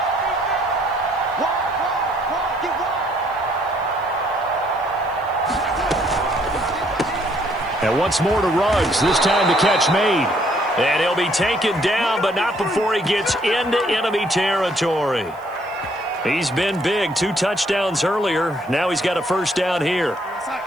And once more to Ruggs, this time the catch made. And he'll be taken down, but not before he gets into enemy territory. He's been big, 2 touchdowns earlier. Now he's got a first down here.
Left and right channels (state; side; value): noise; left; hiss, 29 dB below the sound